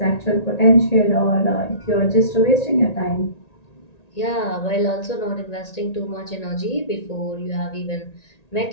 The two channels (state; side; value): late; right; 1.9 ms